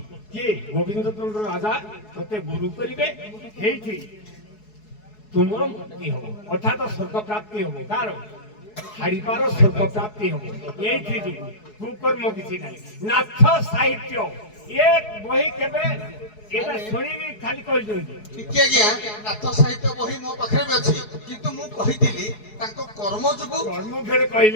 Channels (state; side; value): late; right; 4.7 ms